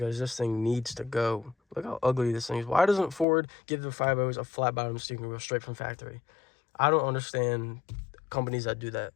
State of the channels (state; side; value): drops out; right; at 3.2 s